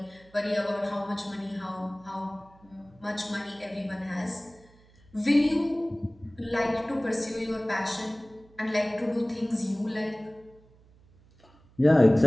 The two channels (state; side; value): noise; right; hum, 28 dB below the sound